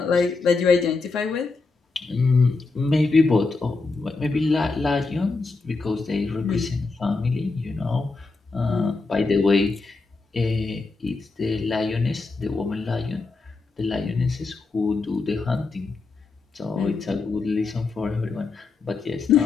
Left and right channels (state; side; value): quieter; right; 3.9 dB